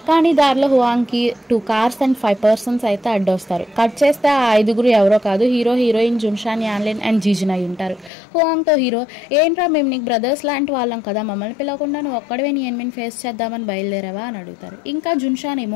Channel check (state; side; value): drops out; right; at 8.1 s